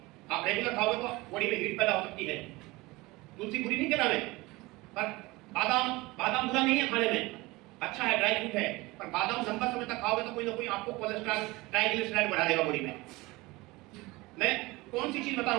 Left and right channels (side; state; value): left; quieter; 21.9 dB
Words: आप रेगुलर खाओगे तो बॉडी में हीट पैदा हो सकती है। तुलसी बुरी नहीं कहना मैं, पर बादाम बुरा नहीं है खाने में, अच्छा है, ड्राई फ्रूट है। पर बादाम लंबा समय तक खाओगे तो कोई ना कोई आपको कोलेस्ट्रॉल, ट्राइग्लिसराइड बढ़ा देगा बॉडी में। मैं कौन सी चीज बता रहा